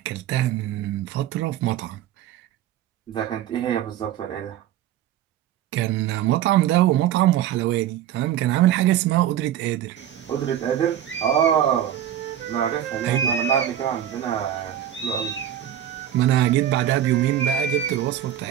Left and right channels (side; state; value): left; quieter; 11.1 dB